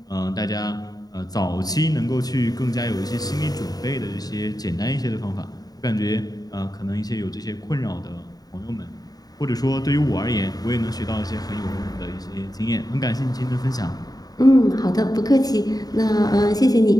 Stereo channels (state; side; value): late; right; 0.18 ms